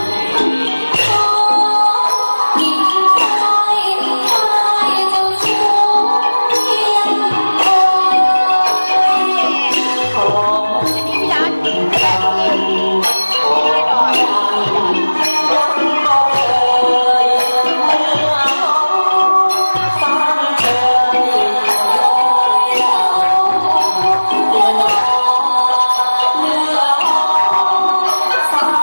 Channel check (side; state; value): both; inverted; correlation -1.00